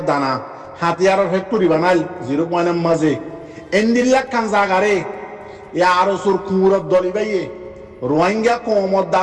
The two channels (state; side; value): identical; both; correlation 1.00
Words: হাতিয়ারের ফ্যাক্টরি বানাইল 0 মাঝে এন্দিল্লা খান জাগারে এ আরো সুর কুমুরত দলি বাইয়ে রোহিঙ্গা কৌমত